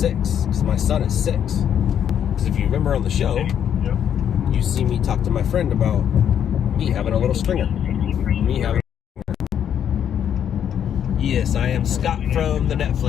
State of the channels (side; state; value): right; quieter; 9.1 dB